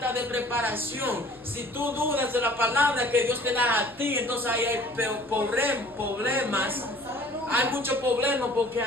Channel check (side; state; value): left; noise; rumble, 30 dB below the sound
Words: de preparación. Si tú dudas de la palabra que Dios te da a ti, entonces ahí hay problemas. Hay muchos problemas, porque